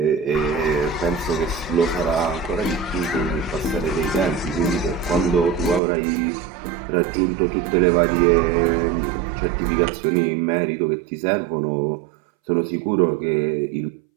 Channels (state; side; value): drops out; left; at 5.8 s